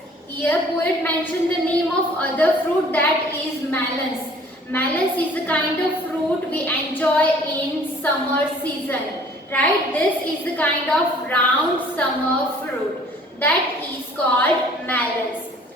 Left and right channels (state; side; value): normal; both; correlation 0.54